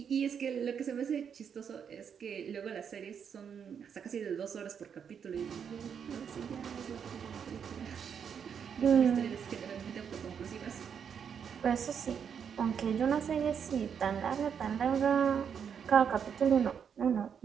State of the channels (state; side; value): quieter; left; 7.4 dB